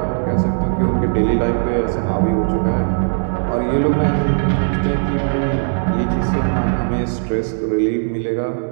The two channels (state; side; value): silent; left; digital silence